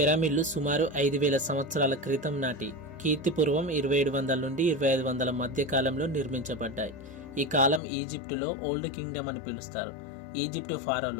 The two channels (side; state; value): right; drops out; at 7.8 s